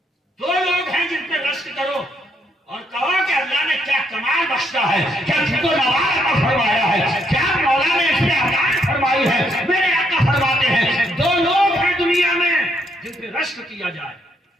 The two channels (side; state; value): both; normal; correlation 0.74